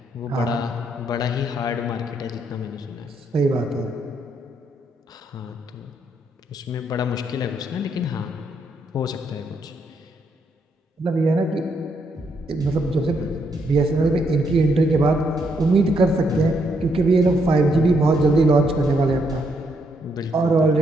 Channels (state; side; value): normal; both; correlation 0.75